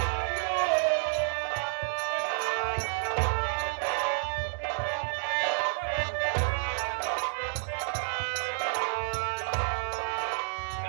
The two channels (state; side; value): silent; left; digital silence